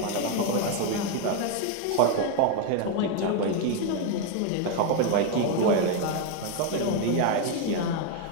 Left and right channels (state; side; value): different; both; correlation 0.01